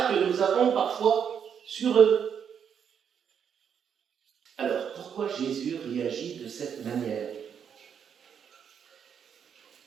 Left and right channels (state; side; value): quieter; left; 7.8 dB